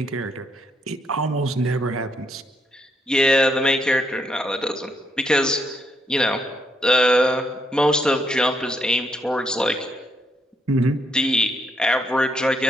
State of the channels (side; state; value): both; normal; correlation 0.75